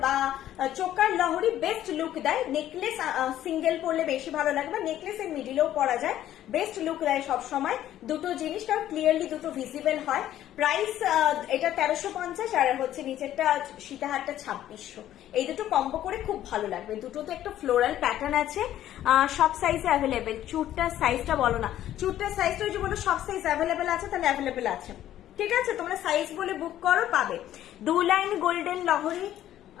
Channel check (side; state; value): right; quieter; 12.4 dB